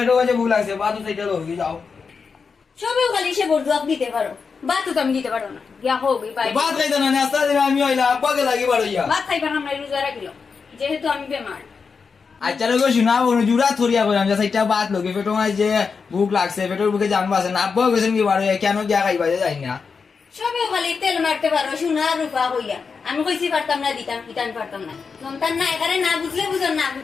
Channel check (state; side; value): quieter; right; 5.3 dB